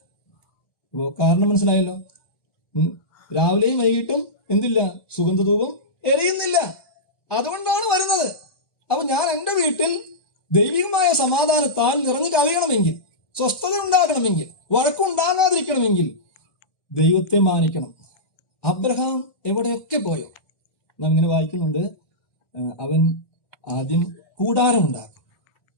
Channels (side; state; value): right; late; 1.1 ms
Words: അപ്പോ കാരണം മനസ്സിലായല്ലോ. രാവിലെയും വൈകിട്ടും എന്തില്ല? സുഗന്ധധൂപം എരിയുന്നില്ല. അതുകൊണ്ടാണ് വരുന്നത്. അപ്പൊ ഞാൻ എൻ്റെ വീട്ടിൽ ദൈവികമായ സമാധാനത്താൽ നിറഞ്ഞു കവിയണമെങ്കിൽ, സ്വസ്ഥത ഉണ്ടാകണമെങ്കിൽ, വഴക്കുണ്ടാകാതിരിക്കണമെങ്കിൽ ദൈവത്തെ മാനിക്കണം. അബ്രഹാം എവിടെയൊക്കെ പോയോ നാം ഇങ്ങനെ വായിക്കുന്നുണ്ട്. അവൻ ആദ്യം കൂടാരം ഉണ്ടാക്കും,